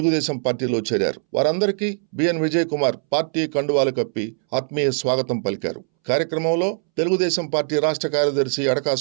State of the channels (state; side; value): silent; left; 65 dB below the other